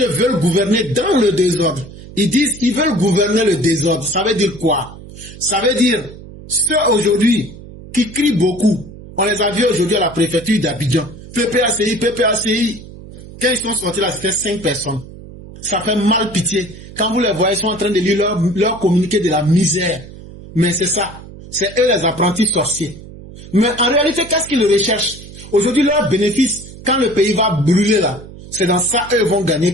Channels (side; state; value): right; noise; hum, 16 dB below the sound